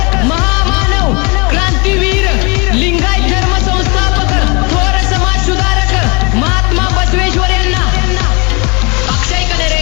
महामानव क्रांतीवीर लिंगायत धर्म संस्थापक थोर समाज सुधारक महात्मा बसवेश्वर यांना अक्षय कनेरे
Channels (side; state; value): right; quieter; 30.0 dB